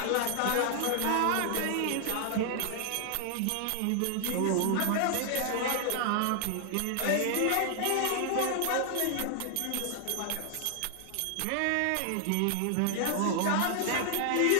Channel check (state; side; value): different; both; correlation 0.00